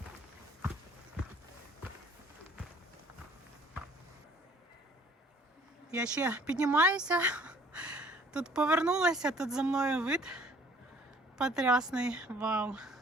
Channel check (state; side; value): normal; both; correlation 0.56